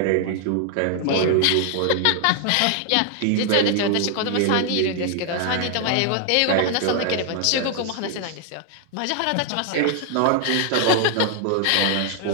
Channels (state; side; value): different; both; correlation 0.00